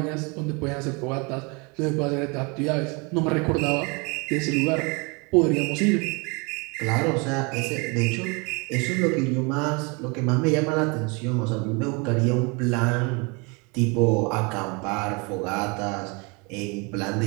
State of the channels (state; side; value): quieter; left; 30.0 dB